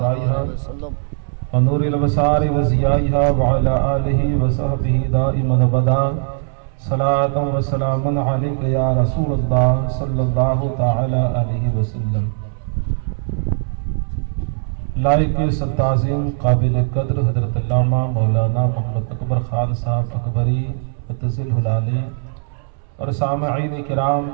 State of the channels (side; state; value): left; silent; 66 dB below the other